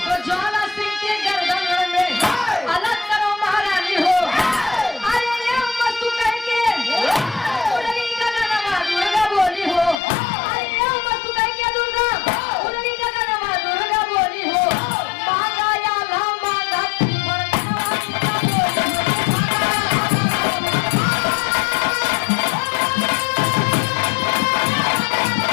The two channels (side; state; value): right; drops out; at 10.0 s